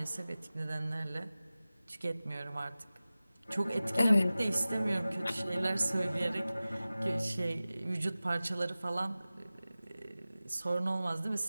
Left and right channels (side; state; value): both; inverted; correlation -0.97